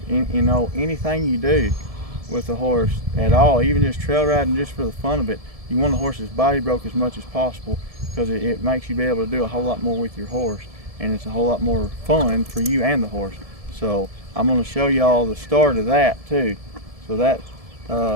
You know, anything you do with a horse at all, even just trail riding just for the fun of it, you want the horse's body broke as much as possible, because it makes you be able to do a whole lot more with your horse, and it's a whole lot more fun for you and the horse. So I'm going to show y'all the start of that too. So this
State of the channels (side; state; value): left; late; 1.7 ms